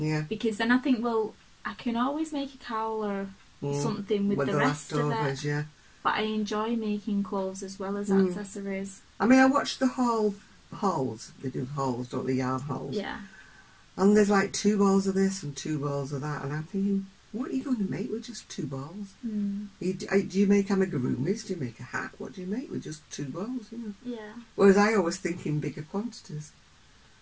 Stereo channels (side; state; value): both; identical; correlation 1.00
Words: Because then I think, well, I can always make a cowl or something with the rest of it. Yeah. But I enjoy making clothes as well as accessories. I mean, I watched the hauls. They do hauls, don't they? Yarn hauls. Yeah. And there's like 2 balls of this and 2 balls of that, and I'm thinking, what are you going to make with just 2 balls? Do you make amigurumis? Do you make a hat? What do you make with just 2 balls? You know? Yeah. Whereas I always think in bigger quantities,